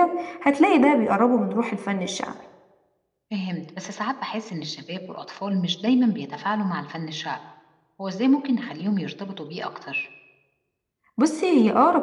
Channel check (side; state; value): both; identical; correlation 1.00